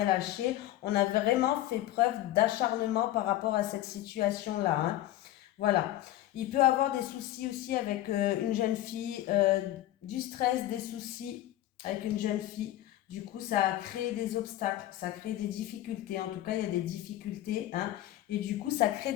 lâché. On a vraiment fait preuve d'acharnement par rapport à cette situation-là, hein. Voilà. Il peut avoir des soucis aussi avec une jeune fille, du stress, des soucis avec une jeune fille. Du coup, ça a créé des obstacles, ça crée des difficultés. En tout cas, il y a des difficultés, hein. Et du coup, ça crée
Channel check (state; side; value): quieter; right; 14.2 dB